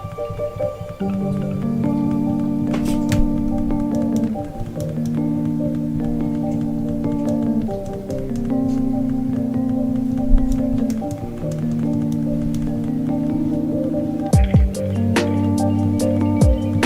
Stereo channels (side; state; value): both; identical; correlation 1.00